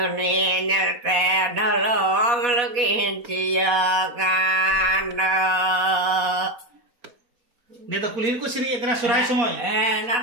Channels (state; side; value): late; left; 4.1 ms